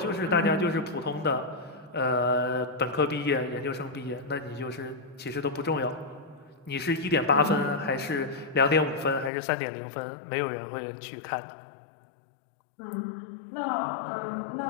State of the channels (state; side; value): drops out; right; at 9.3 s